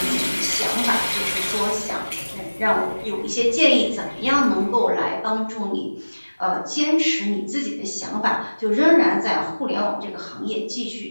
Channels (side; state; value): both; inverted; correlation -1.00